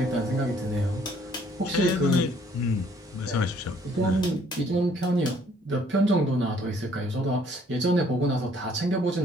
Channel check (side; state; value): both; normal; correlation 0.62